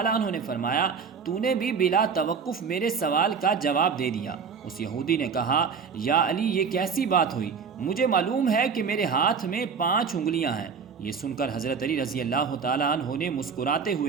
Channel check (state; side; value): quieter; left; 5.9 dB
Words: عنہ نے فرمایا تو نے بھی بلا توقف میرے سوال کا جواب دے دیا۔ اس یہودی نے کہا یا علی یہ کیسی بات ہوئی، مجھے معلوم ہے کہ میرے ہاتھ میں 5 انگلیاں ہیں۔ یہ سن کر حضرت علی رضی اللہ تعالی عنہ نے مسکراتے